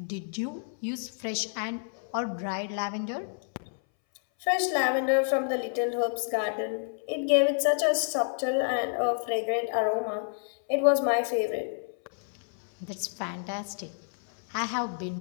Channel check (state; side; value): silent; right; 58 dB below the other